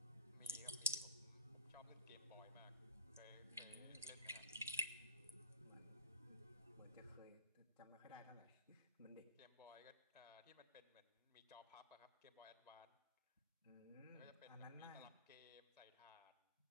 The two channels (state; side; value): inverted; both; correlation -0.30